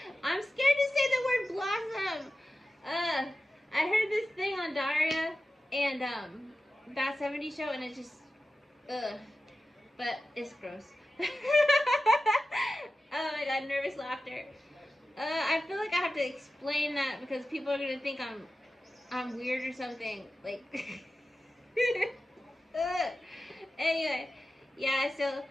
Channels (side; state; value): both; normal; correlation 0.93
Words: I'm scared to say the word blossom. I heard this thing on Daria and that 70s show, and it just but it's gross. Oh my god, nervous laughter. I feel like I have to explain that because people are gonna think I'm weird or something. Like anyway, yeah, so